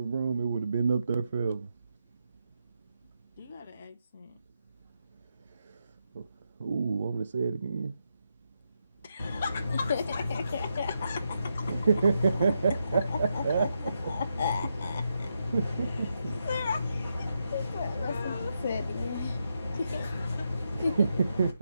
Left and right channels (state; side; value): inverted; both; correlation -0.83